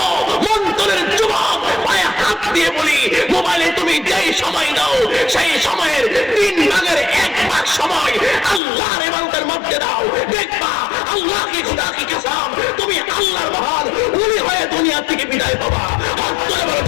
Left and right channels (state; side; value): drops out; right; at 8.6 s